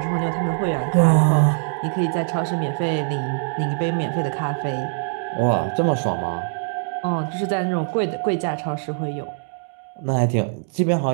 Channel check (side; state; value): left; silent; digital silence